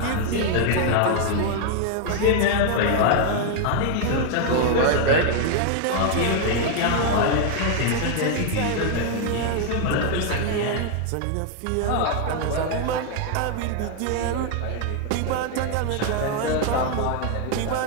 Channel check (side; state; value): both; different; correlation 0.00